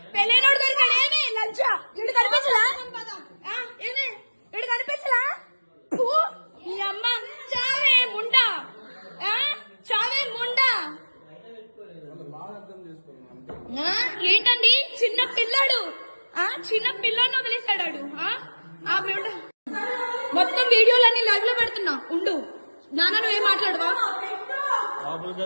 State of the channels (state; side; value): inverted; both; correlation -1.00